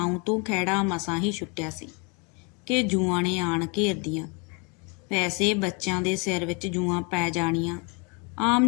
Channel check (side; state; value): right; quieter; 32.7 dB